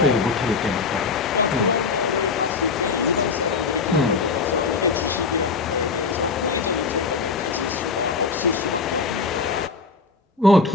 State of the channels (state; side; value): quieter; right; 4.6 dB